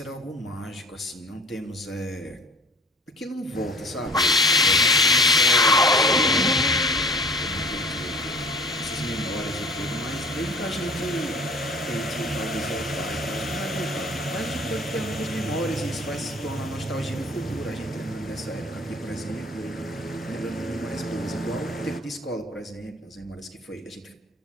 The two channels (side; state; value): both; normal; correlation 0.46